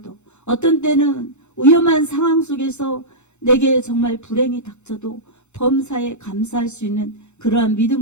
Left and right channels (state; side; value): late; right; 0.83 ms